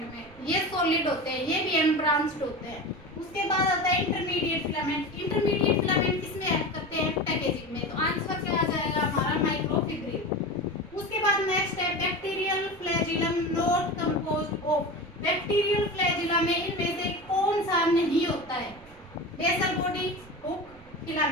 में, ये सॉलिड होते हैं, ये भी अनब्रांच्ड होते हैं। उसके बाद आता है इंटरमीडिएट फिलामेंट। इंटरमीडिएट फिलामेंट किसमें हेल्प करते हैं? पैकेजिंग में। तो आंसर क्या आ जाएगा हमारा? माइक्रोफिब्रिल। उसके बाद नेक्स्ट है, bacterial flagellum not composed of, bacterial flagella में इनमें से कौन सा नहीं होता है? Basal body, hook,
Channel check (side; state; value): right; noise; rumble, 23 dB below the sound